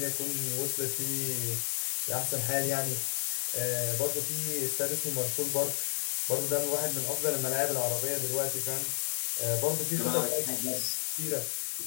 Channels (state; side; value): silent; right; 57 dB below the other